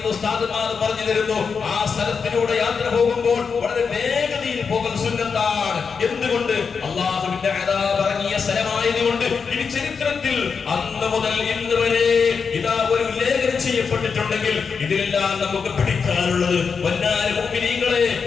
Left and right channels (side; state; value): right; quieter; 5.7 dB